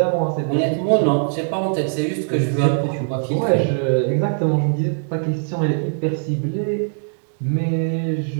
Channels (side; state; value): left; silent; 65 dB below the other